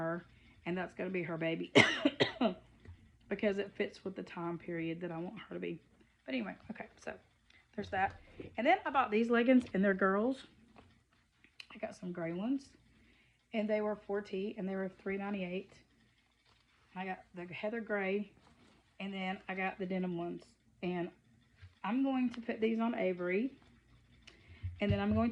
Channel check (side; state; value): both; identical; correlation 1.00